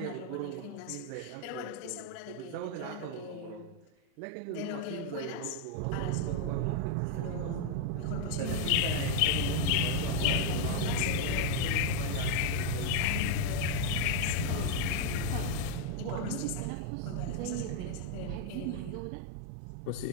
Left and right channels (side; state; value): both; different; correlation 0.00